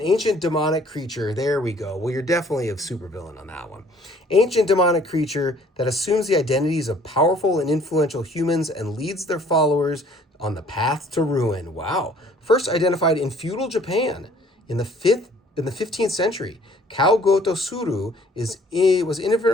ancient demonic creature. There we go. Well, you're definitely a supervillain on that one. Ancient demonic creature that assumes the identities of powerful and influential humans and leads their followers on the path to ruin. Wow. First identified in feudal Japan in the 15th century, Kao Goto Suru was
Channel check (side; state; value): both; normal; correlation 0.57